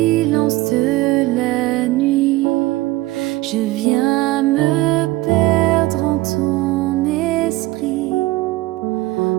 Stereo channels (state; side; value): quieter; left; 18.7 dB